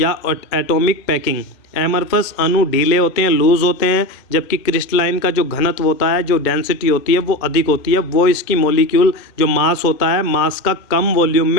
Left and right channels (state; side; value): late; right; 2.1 ms